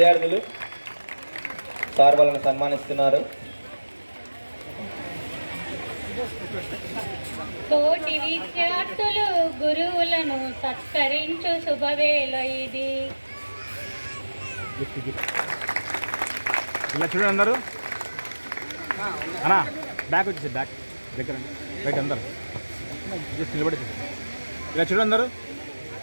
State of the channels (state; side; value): inverted; both; correlation -1.00